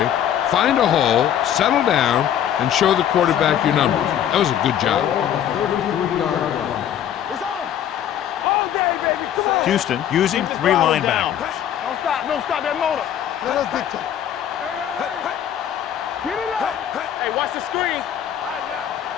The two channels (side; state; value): right; quieter; 10.1 dB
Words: find a hole, settle down, and show the quarterback your numbers. That was a good job. On the 33-yard line. It's on. All day, baby. Come on. Houston using three linebackers. Don't stop. Don't stop that motor. Let us dictate. Get it up. Hey, watch the screen. All right, now.